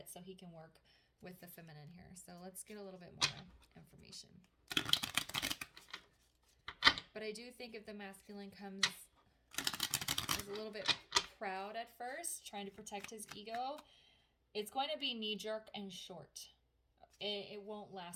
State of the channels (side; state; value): both; identical; correlation 1.00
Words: so he can work with the feminine here. So let's get a little bit more information. But I do think if the masculine comes as a little bit proud at first, trying to protect his ego, it's going to be knee-jerk and short. It won't